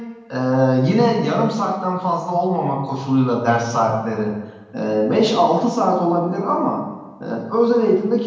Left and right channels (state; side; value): identical; both; correlation 1.00